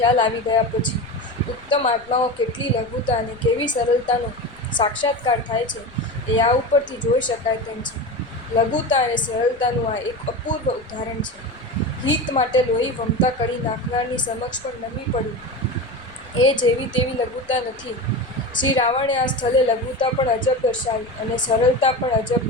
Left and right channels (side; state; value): left; noise; rumble, 26 dB below the sound